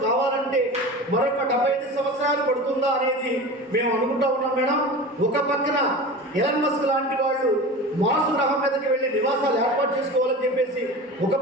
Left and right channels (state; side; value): normal; both; correlation 0.32